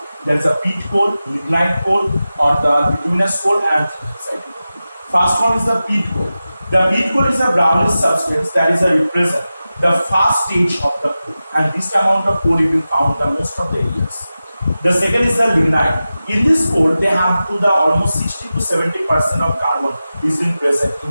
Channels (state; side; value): inverted; both; correlation -0.94